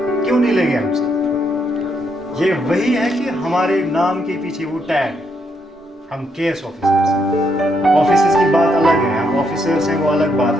नहीं लेंगे हमसे? ये वही है कि हमारे नाम के पीछे वो टैग, हम केएस ऑफिसर्स हैं. ऑफिसर्स की बात अलग है, हम ऑफिसर्स हैं, वो अलग बात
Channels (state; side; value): normal; both; correlation 0.76